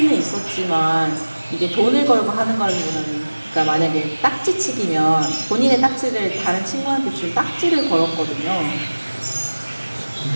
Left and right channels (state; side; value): inverted; both; correlation -1.00